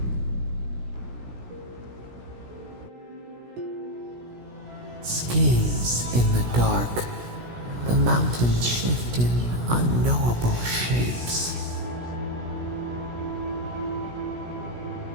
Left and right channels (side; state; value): left; late; 17 ms